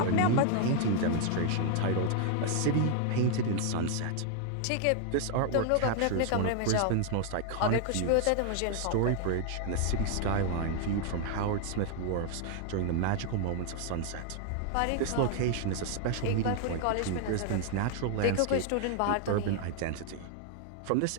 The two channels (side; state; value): both; different; correlation 0.00